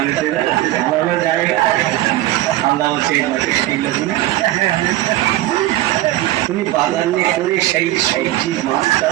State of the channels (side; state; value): left; quieter; 15.5 dB